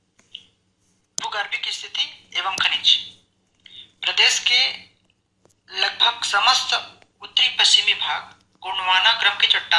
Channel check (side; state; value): both; identical; correlation 1.00